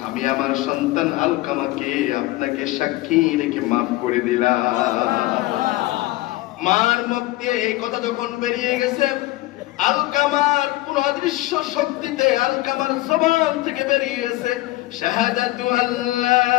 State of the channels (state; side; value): quieter; right; 18.3 dB